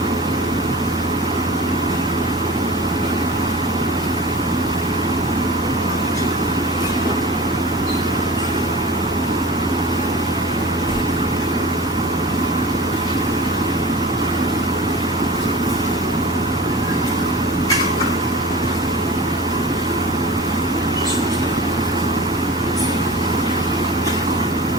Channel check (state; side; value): normal; both; correlation 0.37